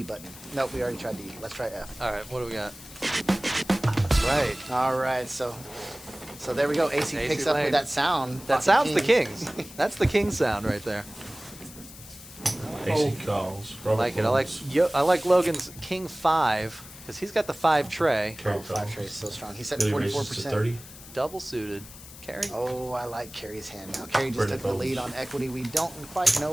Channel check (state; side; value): noise; left; hiss, 17 dB below the sound